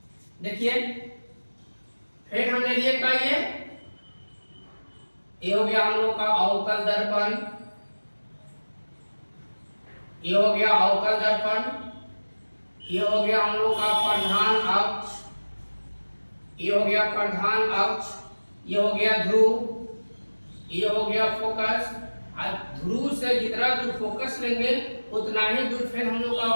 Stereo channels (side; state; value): both; inverted; correlation -1.00